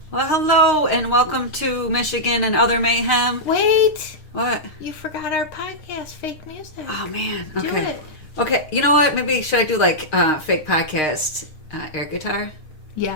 Well, hello and welcome to Michigan and Other Mayhem. Wait, What? you forgot our podcast, Fake Music. Oh man. Do Okay. it. Okay. You know what? Maybe should I do like fake podcast air guitar? Yes.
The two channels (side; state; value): right; late; 6.5 ms